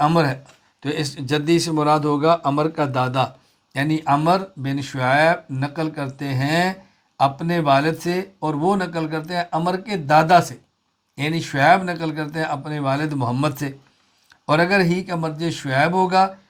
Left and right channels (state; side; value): identical; both; correlation 1.00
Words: عمر ہے، تو اس جدی سے مراد ہوگا عمر کا دادا، یعنی عمر بن شعیب نقل کرتے ہیں اپنے والد سے اور وہ نقل کرتے ہیں عمر کے دادا سے، یعنی شعیب نقل کرتے ہیں اپنے والد محمد سے، اور اگر ہی کا مرجع شعیب ہوگا